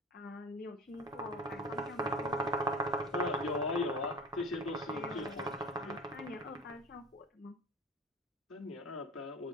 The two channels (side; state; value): both; normal; correlation 0.38